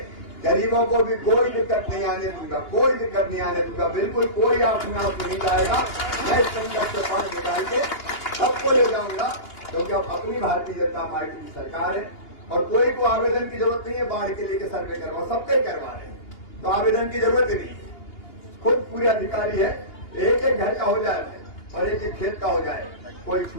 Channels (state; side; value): late; right; 2.8 ms